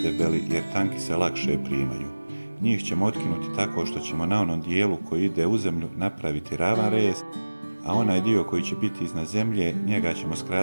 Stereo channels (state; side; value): inverted; both; correlation -1.00